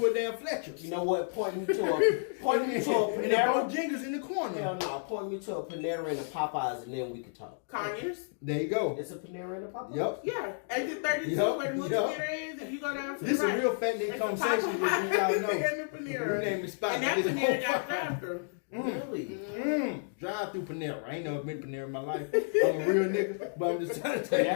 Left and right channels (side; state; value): right; silent; digital silence